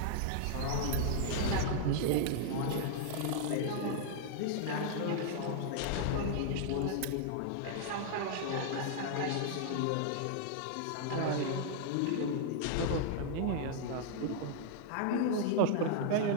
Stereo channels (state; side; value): different; both; correlation -0.01